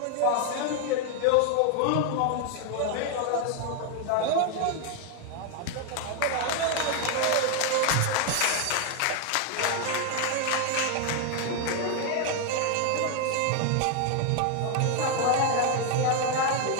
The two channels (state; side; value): different; both; correlation 0.00